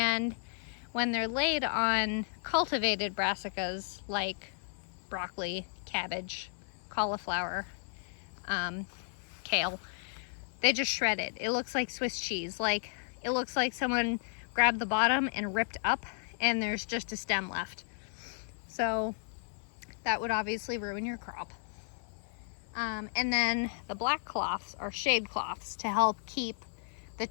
when they're laid on cultivated brassicas like broccoli, cabbage, cauliflower, kale, they just shred it. It looks like Swiss cheese. Like, it looks like someone grabbed the bottom and ripped up and there's just a stem left. So that would obviously ruin your crop. And then the black cloths are shade cloths to help keep the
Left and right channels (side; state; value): right; silent; 55 dB below the other